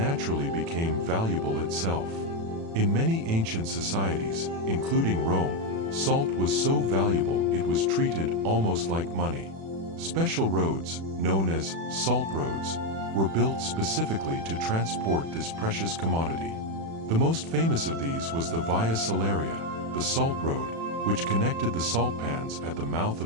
became valuable itself. In many ancient societies, including Rome, salt was so valuable it was treated almost like money. Special roads, known as salt roads, were built specifically to transport this precious commodity. The most famous of these was the Via Salaria, the Salt Road, which connected the salt pans at the mouth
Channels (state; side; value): late; left; 36 ms